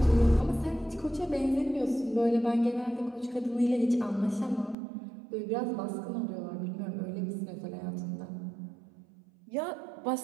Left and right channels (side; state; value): left; drops out; at 4.8 s